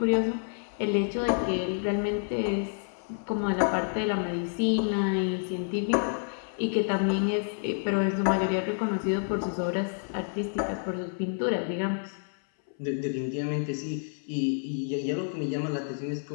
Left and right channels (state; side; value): silent; right; 59 dB below the other